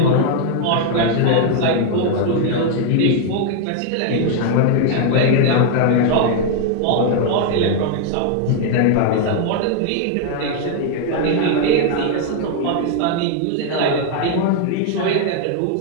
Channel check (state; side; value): different; both; correlation 0.00